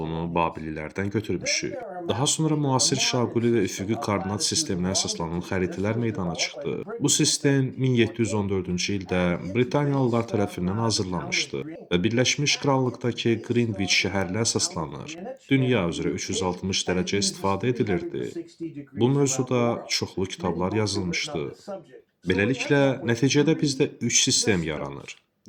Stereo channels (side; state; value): both; identical; correlation 1.00